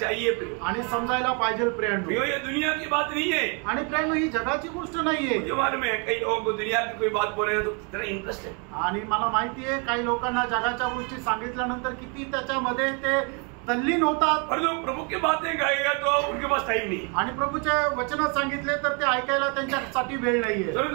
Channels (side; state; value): left; quieter; 35.0 dB